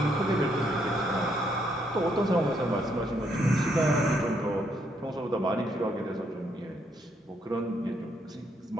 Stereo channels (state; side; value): normal; both; correlation 0.74